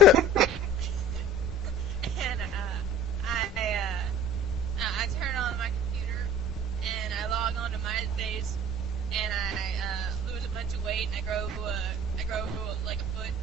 and I turn on my computer, and I log on to MySpace, and I lose a bunch of weight, and I grow like a foot,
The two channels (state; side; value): normal; both; correlation 0.45